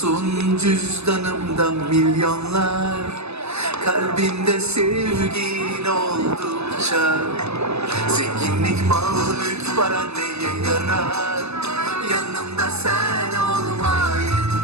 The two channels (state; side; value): late; left; 0.80 ms